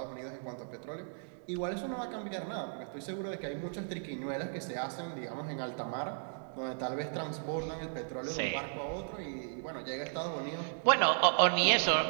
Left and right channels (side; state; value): left; silent; digital silence